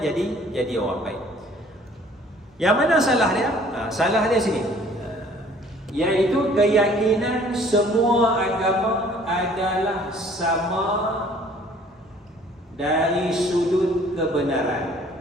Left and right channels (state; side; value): normal; both; correlation 0.55